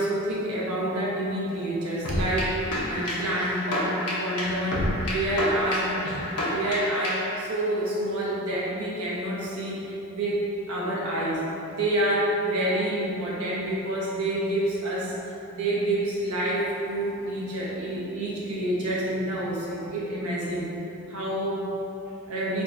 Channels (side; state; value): both; normal; correlation 0.28